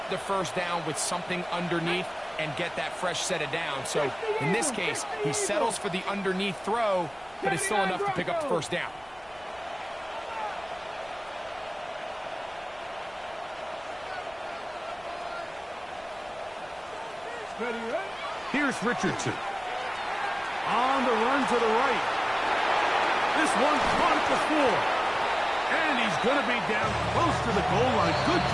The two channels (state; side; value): noise; left; rumble, 27 dB below the sound